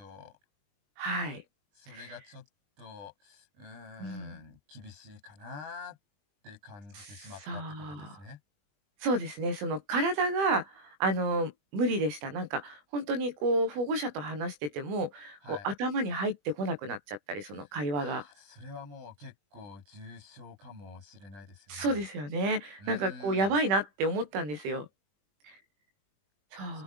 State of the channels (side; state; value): left; late; 20 ms